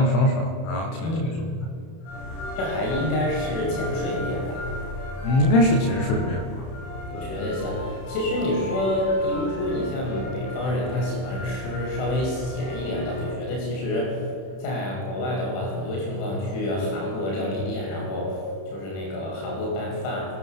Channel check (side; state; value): right; late; 31 ms